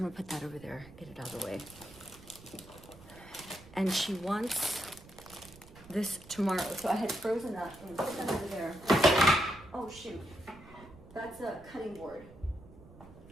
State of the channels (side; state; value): right; noise; rumble, 20 dB below the sound